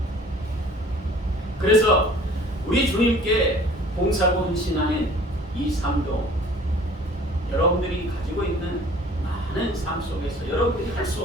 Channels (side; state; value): both; normal; correlation 0.50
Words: 그래서 우리 주님께 봉사하고 헌신하는 이 삶도 여러분들이 가지고 있는 많은 삶 속에서 여러분들이 할